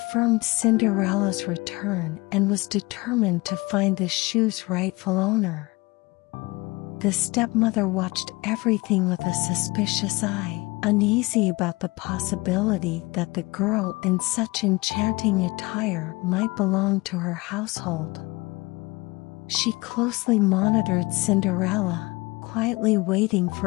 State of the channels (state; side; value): quieter; right; 23.3 dB